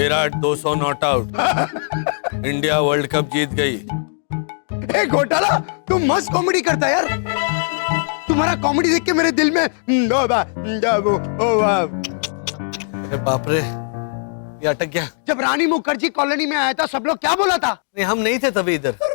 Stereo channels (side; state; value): right; silent; 66 dB below the other